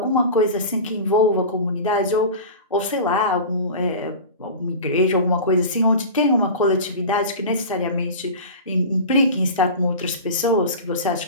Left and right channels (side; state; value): both; inverted; correlation -0.32